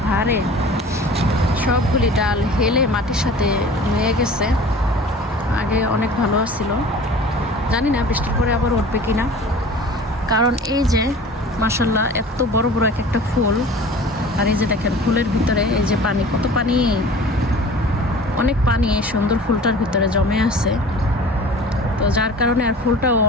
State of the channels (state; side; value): normal; both; correlation 0.43